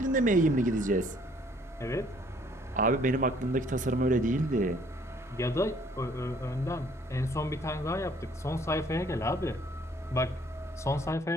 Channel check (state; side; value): normal; both; correlation 0.61